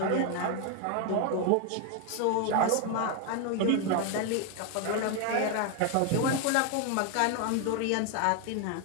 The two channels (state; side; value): different; both; correlation 0.01